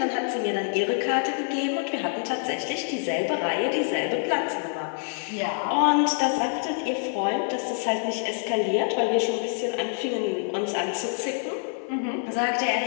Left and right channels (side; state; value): right; silent; 57 dB below the other